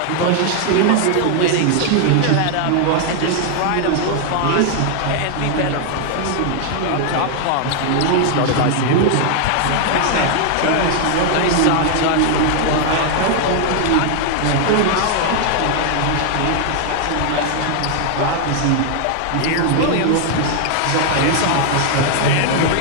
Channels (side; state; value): both; different; correlation 0.00